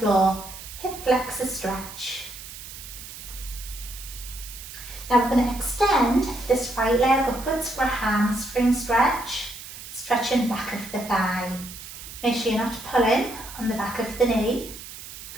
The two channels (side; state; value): right; noise; hiss, 13 dB below the sound